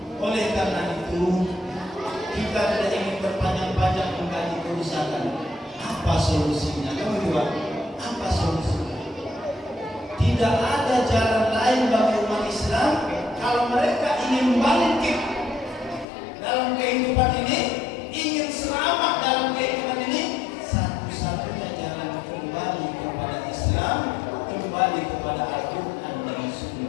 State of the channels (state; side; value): drops out; right; at 16.1 s